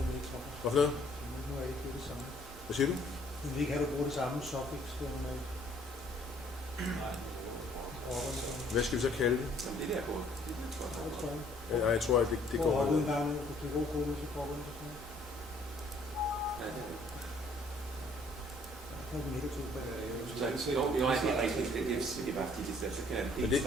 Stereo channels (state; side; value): normal; both; correlation 0.61